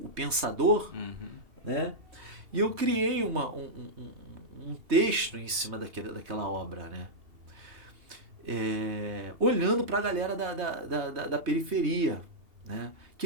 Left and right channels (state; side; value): late; left; 3.2 ms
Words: pensador, né? E eu criei um texto em cima daquela obra, né? Olhando para a galera da periferia, né?